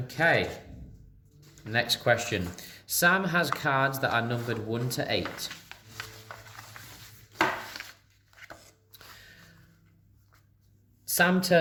next question. Sam has cards that are numbered 1 to 8. Sam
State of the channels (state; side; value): identical; both; correlation 1.00